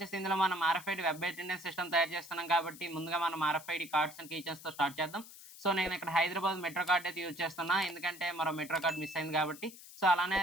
ఇందులో మనం ఆర్ఎఫ్ఐడి వెబ్ అటెండెన్స్ సిస్టమ్ తయారు చేస్తున్నాం కాబట్టి ముందుగా మనం ఆర్ఎఫ్ఐడి కార్డ్స్ అండ్ కీచైన్స్‌తో స్టార్ట్ చేద్దాం. సో నేను ఇక్కడ హైదరాబాద్ మెట్రో కార్డ్ అయితే యూజ్ చేస్తున్నా. ఎందుకంటే మరో మెట్రో కార్డ్ మిస్ అయింది కాబట్టి. సో అలానే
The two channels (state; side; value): noise; left; hiss, 17 dB below the sound